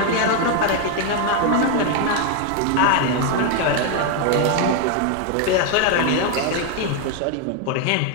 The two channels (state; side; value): different; both; correlation 0.01